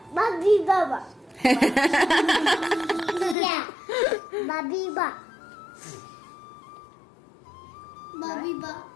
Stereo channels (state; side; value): drops out; right; at 3.4 s